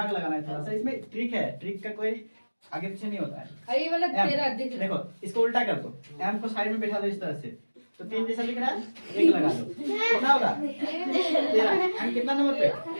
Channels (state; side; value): inverted; both; correlation -1.00